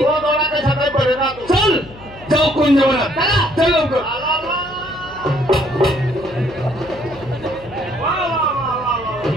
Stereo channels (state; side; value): noise; left; hum, 19 dB below the sound